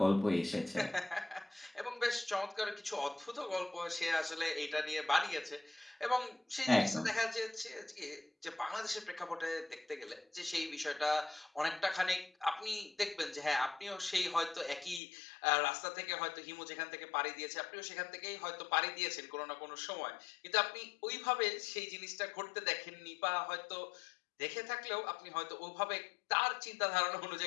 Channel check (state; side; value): drops out; right; at 15.0 s